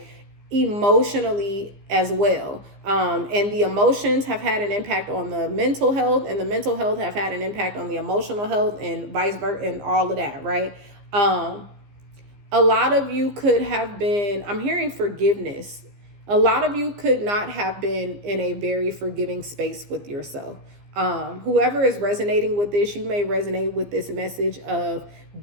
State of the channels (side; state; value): left; late; 15 ms